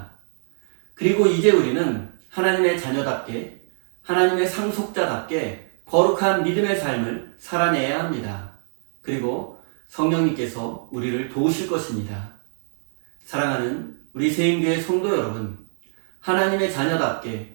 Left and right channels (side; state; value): left; silent; digital silence